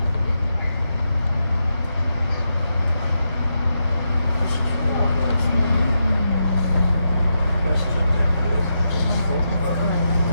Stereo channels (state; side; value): inverted; both; correlation -0.85